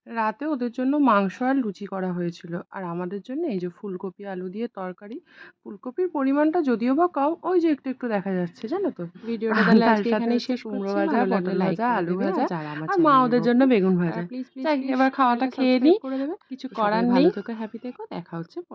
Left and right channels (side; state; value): both; identical; correlation 1.00